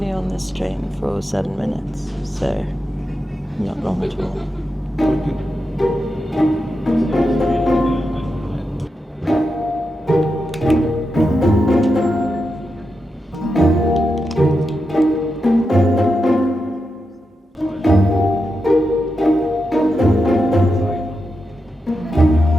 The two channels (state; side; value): normal; both; correlation 0.88